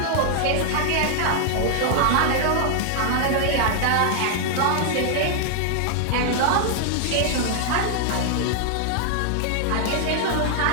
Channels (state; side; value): different; both; correlation 0.00